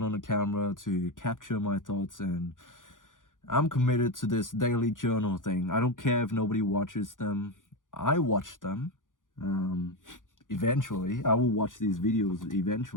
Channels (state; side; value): late; right; 0.88 ms